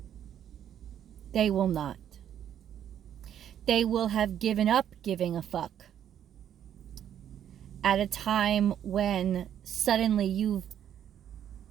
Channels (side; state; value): left; quieter; 10.0 dB